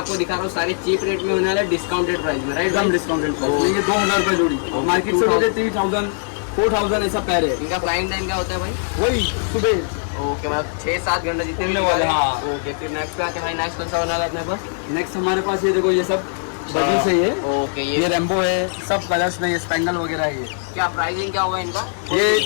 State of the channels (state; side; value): silent; right; digital silence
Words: दिखा रहा हूँ सारे चीप रेट में होने वाला है, डिस्काउंटेड प्राइस में, राइट? एकदम डिस्काउंटेड प्राइस। ये 2000 रुपए जोड़ी। मार्केट से लोगे 3000 4000 ऐसा पैर है। इनका फ्लाइंग टाइम क्या होता है भाई? वही सुबह। ओके, मतलब 6-7 घंटे जितने भी उड़ने वाले। हाँ। ओके, फिर नेक्स्ट पे आते हैं भाई, नेक्स्ट कौन सा होने वाला है अपने पास? नेक्स्ट हमारे पास ये देखो ये सब बड़ी से ये। ओके, ये रेम्बो है, सब कलर्स में, ये स्पेंगल वगैरह है ये। क्या प्राइसिंग क्या होगा इनका? ये